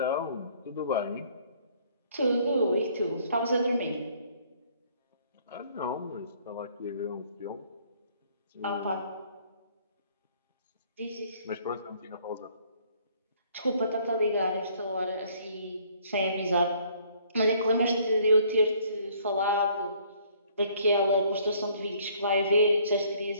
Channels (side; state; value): both; inverted; correlation -0.61